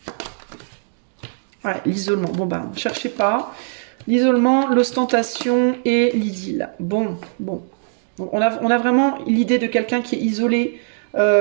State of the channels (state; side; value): silent; left; digital silence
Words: Ouais, l'isolement. Bon, bah, cherchez pas. L'isolement, l'ostentation et l'idylle. Bon. On a vraiment l'idée de quelqu'un qui est isolé,